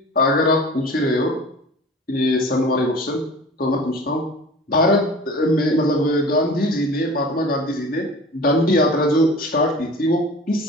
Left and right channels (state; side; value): normal; both; correlation 0.40